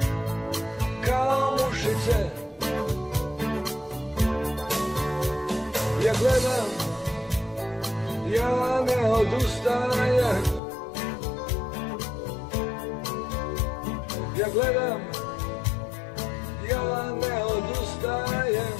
kao mušice. Ja gledam, ja ne odustajem. Ja gledam, ja ne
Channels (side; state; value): right; drops out; at 10.6 s